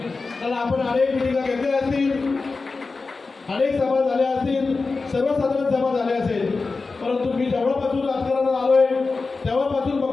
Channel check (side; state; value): right; quieter; 4.0 dB